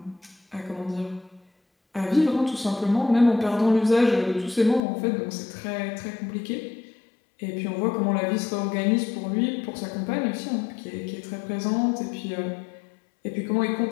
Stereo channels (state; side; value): drops out; right; at 4.8 s